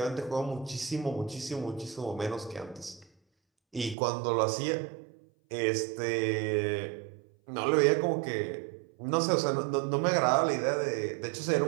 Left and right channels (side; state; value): left; drops out; at 4.0 s